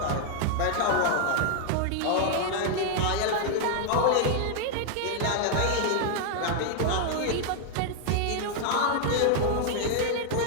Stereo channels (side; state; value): both; different; correlation 0.00